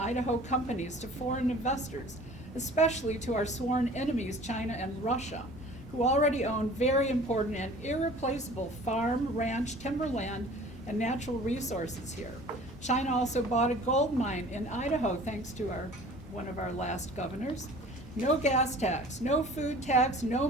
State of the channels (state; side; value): normal; both; correlation 0.46